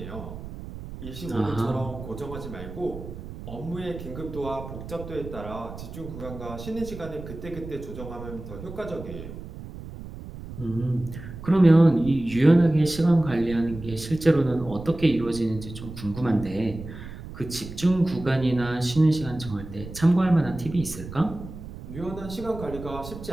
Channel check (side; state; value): right; noise; rumble, 12 dB below the sound